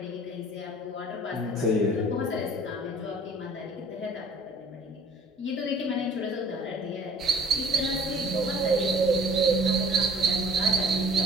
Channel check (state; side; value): normal; both; correlation 0.51